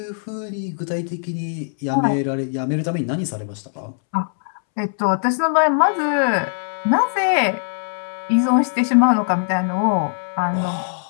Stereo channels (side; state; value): right; silent; 65 dB below the other